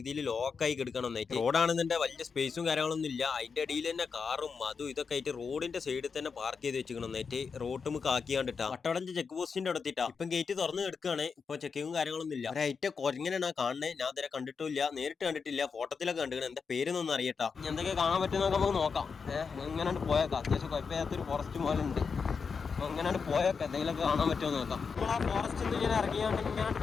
ലോക്കായി കിടക്കണം എന്നായിട്ട്. റോഡാണെന്നെ വലിയ സ്പേസും കാര്യങ്ങളൊന്നും ഇല്ല. അതിന്റെ അടിയിൽ തന്നെ കാറും അതും ഇതൊക്കെ ആയിട്ട് റോഡിന്റെ സൈഡിൽ തന്നെ പാർക്ക് ചെയ്ത് വെച്ചിക്കണം എന്നായിട്ട്. റോഡ് നമുക്ക് ആക്കിയാണ്ടിട്ടാ വട്ടവടഞ്ച് ചെക്ക് പോസ്റ്റിന്റെ അടുത്തിട്ടാ ഇപ്പം ഗേറ്റ് തുറന്ന് കിടക്കുകയാണ്. ഇപ്പൊ ചെക്കിങ്ങും കാര്യങ്ങളൊന്നും ഇല്ല. ഒരൈറ്റ കൊരങ്ങനെയാണ് കാണുന്നത്. ഞാൻ ഇതുവരെ കണ്ടിട്ടില്ല, നേരിട്ട് കണ്ടിട്ടില്ല, ഫോട്ടോത്തിലൊക്കെ കണ്ടിരിക്കണം. എന്താ പേരൊന്നും അറിയട്ടാ. എന്തൊക്കെ കാണാൻ പറ്റുന്നൊക്കെ നമുക്ക് നോക്കാം. ഇങ്ങനെ പോയേക്കാം. അത്യാവശ്യം കുഴപ്പമില്ലാത്തൊരു ഫോറസ്റ്റ് പോലെ ഉണ്ട്. അപ്പോൾ ഇങ്ങനെ പോയൊക്കെ എന്തെങ്കിലുമൊക്കെ കാണാൻ പറ്റുമോ നോക്കാം. നമ്മൾ ആ ഫോറസ്റ്റിൽ നിന്ന് ഇങ്ങനെ ഇറങ്ങിയാണ്ട് ഇങ്ങനെ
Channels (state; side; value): quieter; right; 5.5 dB